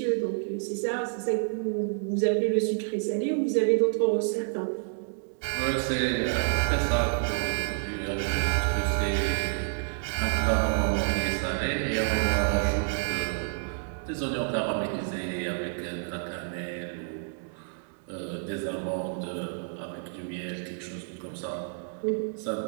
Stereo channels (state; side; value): silent; left; digital silence